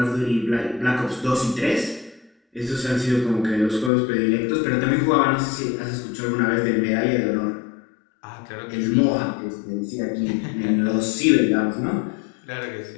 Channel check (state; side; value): drops out; right; at 3.9 s